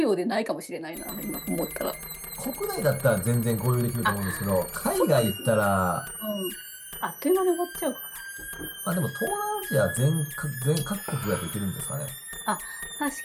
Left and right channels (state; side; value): identical; both; correlation 1.00